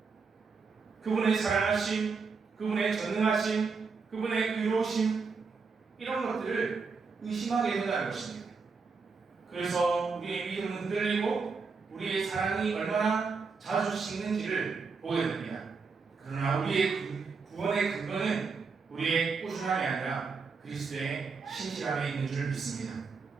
그분의 사랑하심, 그분의 전능하심, 그분의 의로우심 이런 것들을 의심하게 된다는 것입니다. 그래서 우리의 믿음은 흔들리고 우리의 사랑이 얼마나 자주 식는지를 보게 됩니다. 그러나 우리의 구원의 근거는 우리의 꾸준함이 아니라 그리스도의 신실함에 있는 줄 믿습니다.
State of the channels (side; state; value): left; quieter; 4.9 dB